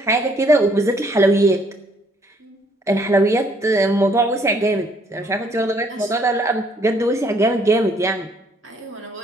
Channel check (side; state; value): both; normal; correlation 0.65